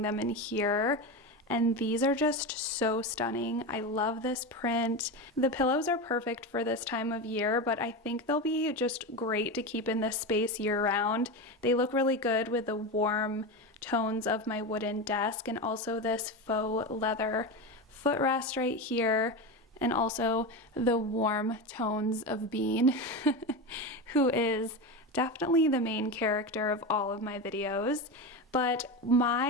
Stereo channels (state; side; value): normal; both; correlation 0.19